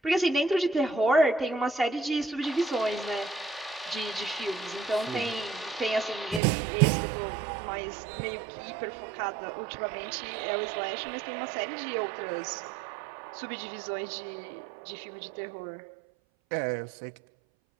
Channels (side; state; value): left; drops out; at 6.4 s